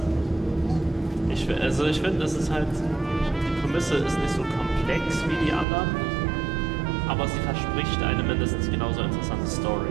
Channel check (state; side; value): drops out; left; at 5.7 s